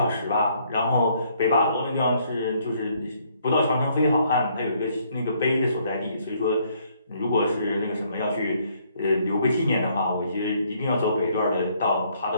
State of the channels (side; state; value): both; inverted; correlation -0.67